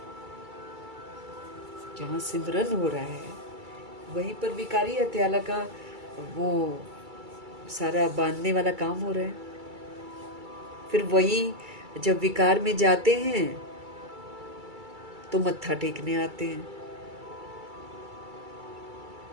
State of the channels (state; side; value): late; left; 2.3 ms